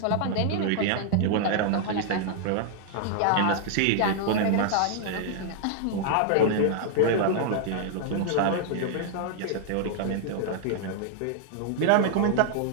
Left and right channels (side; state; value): both; different; correlation 0.00